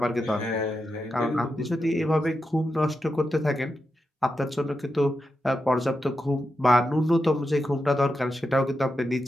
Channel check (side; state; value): both; normal; correlation 0.88